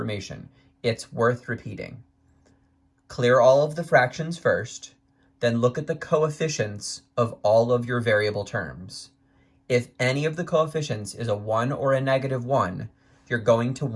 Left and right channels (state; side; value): identical; both; correlation 1.00